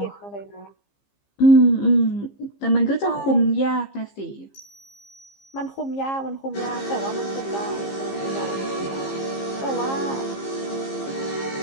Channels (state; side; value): late; right; 15 ms